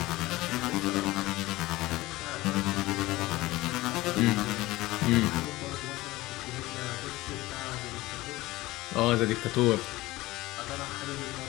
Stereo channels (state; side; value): quieter; right; 18.8 dB